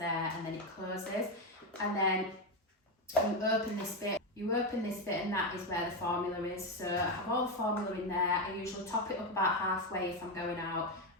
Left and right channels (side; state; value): both; normal; correlation 0.10